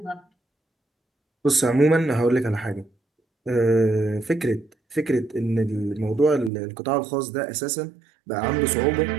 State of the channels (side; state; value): left; drops out; at 6.5 s